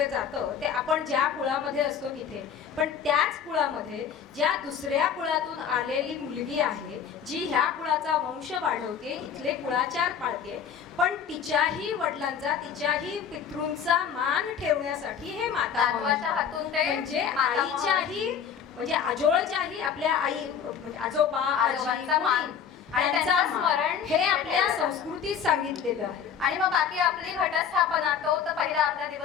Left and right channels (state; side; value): quieter; right; 7.7 dB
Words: जातं ते आपण ज्या कुळामध्ये असतो तिथे, पण त्याच कुळामध्ये ज्या दुसऱ्या कुळातून आलेली मुलगी आहे जी ह्या कुळाचा वंश वाढवते, इथले कुळाचार पाळते, पण तिच्याही वडिलांचा, तिच्याही पितृंचा मान ठेवण्यासाठी हे माता नातवाच्या हातून ते म्हणजे मातामह- आईच्याही, म्हणजे आजोळच्याही आपल्या आई, म्हणजे आजोबा आजोबांचा आजी, मान आणि त्यांचा त्यांचं मान, स्मरण हे आपल्या ठेवायचं. संस्कृतीत सांगितलेलं आहे. आणि मग बाकी आपली घटस्थापना, तो तर पहिला आपला